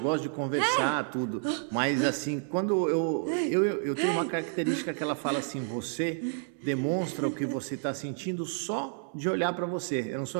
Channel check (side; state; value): left; silent; 58 dB below the other